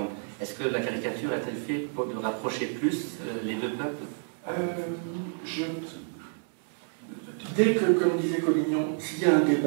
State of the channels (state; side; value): silent; left; 59 dB below the other